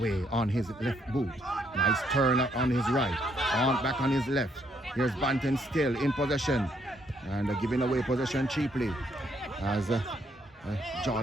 on his left boot. Nice turn up on his right. On back on his left. Here's Bantam still in possession. And giving away possession cheaply. As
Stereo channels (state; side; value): normal; both; correlation 0.72